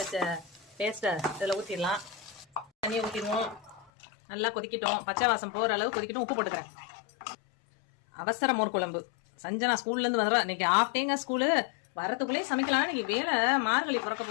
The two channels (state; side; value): drops out; right; at 3.9 s